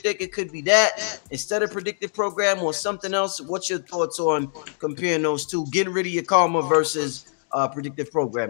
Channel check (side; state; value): right; silent; digital silence